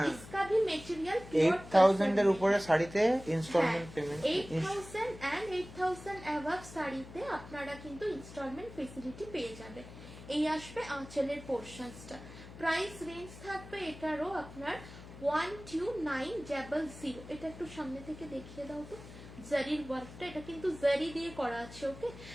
इसका भी मटेरियल 8,000 এর উপরে শাড়িতে ইনস্টলমেন্ট পেমেন্ট 8,000 এন্ড 8,000 অ্যাবাভ শাড়িতে আপনারা কিন্তু ইনস্টলমেন্ট ফেসিলিটি পেয়ে যাবেন. এই আসবে আঁচলের পোর্শনসটা. প্রাইস রেঞ্জ থাকবে এটারও আপনার 12,900. এটা একটু সামনে থেকে দেখিয়ে দাও তো জারির ওয়ার্কটা. এটা কিন্তু জারি দিয়ে করা আছে. ওকে,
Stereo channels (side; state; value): left; noise; hum, 15 dB below the sound